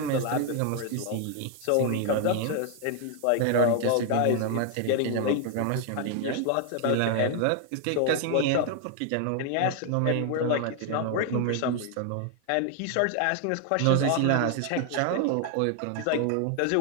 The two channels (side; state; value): both; different; correlation 0.00